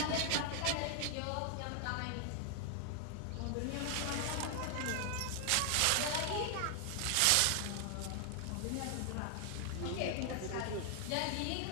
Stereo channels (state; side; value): different; both; correlation 0.00